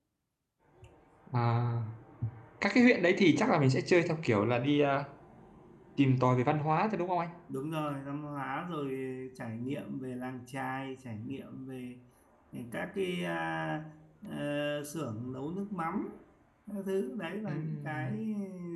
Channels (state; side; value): identical; both; correlation 1.00